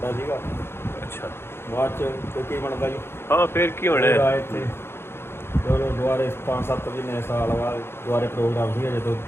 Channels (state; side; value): late; right; 0.12 ms